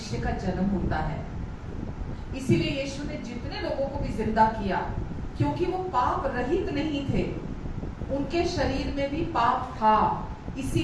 का जन्म होता है। इसीलिए यीशु ने जितने लोगों को भी जिंदा किया, क्योंकि वो पाप रहित नहीं थे, उनके शरीर में भी पाप था,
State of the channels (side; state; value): both; identical; correlation 1.00